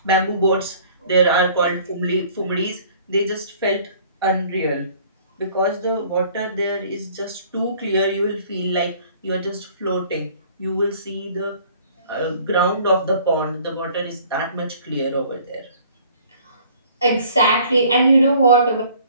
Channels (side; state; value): both; inverted; correlation -0.54